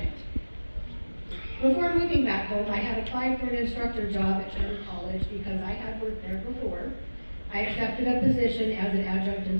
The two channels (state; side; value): inverted; both; correlation -1.00